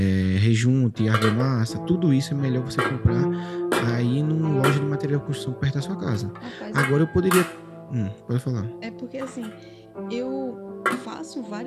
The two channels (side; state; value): both; identical; correlation 1.00